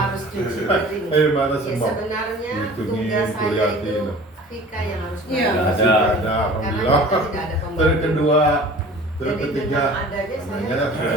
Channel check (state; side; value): normal; both; correlation 0.44